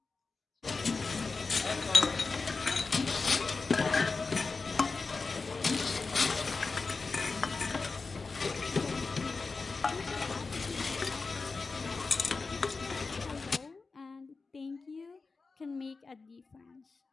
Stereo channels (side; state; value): right; quieter; 4.2 dB